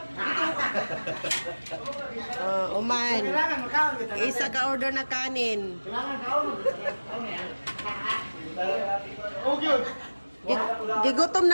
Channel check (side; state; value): both; inverted; correlation -1.00